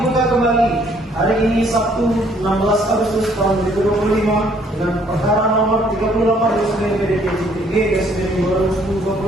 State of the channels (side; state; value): both; normal; correlation 0.63